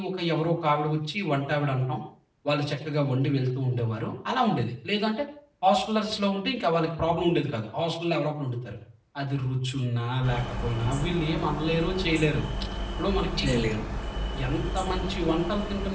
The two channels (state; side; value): identical; both; correlation 1.00